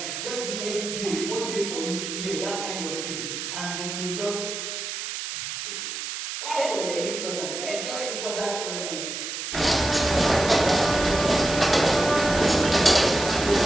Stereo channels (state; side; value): noise; right; hiss, 6 dB below the sound